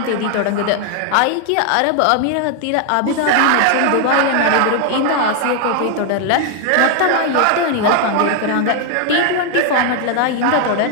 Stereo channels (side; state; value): both; different; correlation 0.00